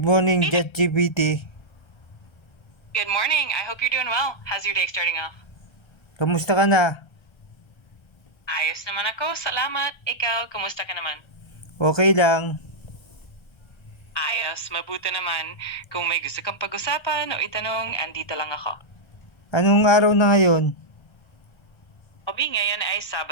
morning ChatGPT. Good morning. I hope you're doing well. How's your day starting off? Kamusta ka na? Ayos naman ako. Salamat. Ikaw, kumusta ka naman? Okay lang. Ayos. Mabuti naman. Kung may gusto kang pag-usapan o itanong, andito lang ako. Anong araw na ngayon? Obi, ngayon ay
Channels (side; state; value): right; late; 1.3 ms